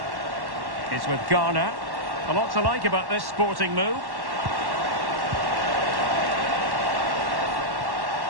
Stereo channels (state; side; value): late; left; 1.1 ms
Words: It's with Garner. A lot to like about this Sporting move.